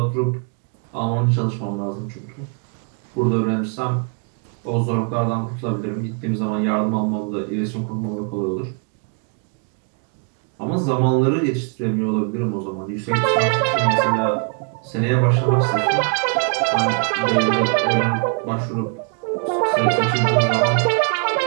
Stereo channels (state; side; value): quieter; left; 39.0 dB